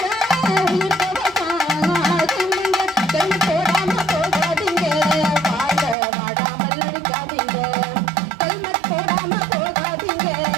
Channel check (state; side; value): drops out; left; at 6.0 s